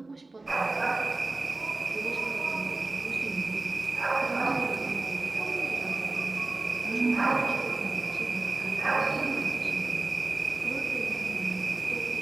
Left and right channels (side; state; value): left; quieter; 3.2 dB